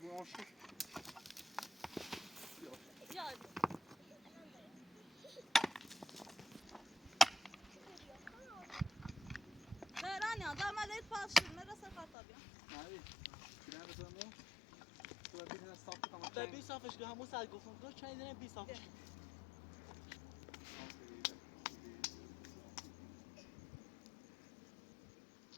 آن شد یاد برانی ها در ملیت پاشیم مرسه خطابی مالی کلام بزنمو تو ببین صاف کنم به 20 صافش که همون سر گفتم دو چند دونه 20 صافش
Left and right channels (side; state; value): right; drops out; at 12.1 s